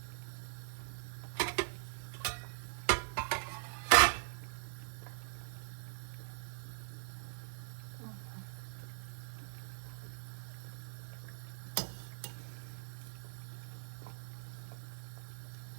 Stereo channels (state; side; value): silent; left; digital silence